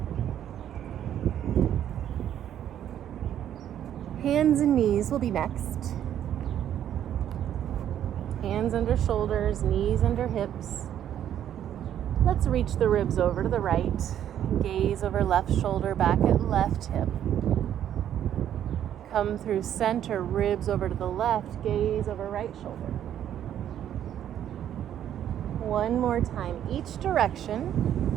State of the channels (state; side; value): quieter; left; 10.5 dB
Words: Hands and knees will be next. Hands under shoulders, knees under hips. Let's reach the ribs over to the right. Gaze over left shoulder, back at left hip. Come through center, ribs over to the left, gaze over right shoulder. One more time, each direction.